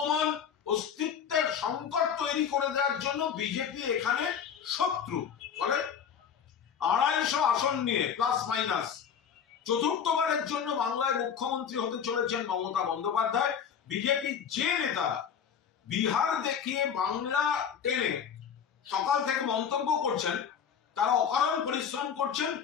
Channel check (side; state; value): right; quieter; 7.6 dB